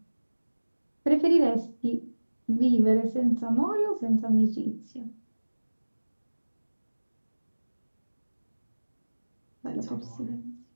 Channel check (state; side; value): inverted; both; correlation -1.00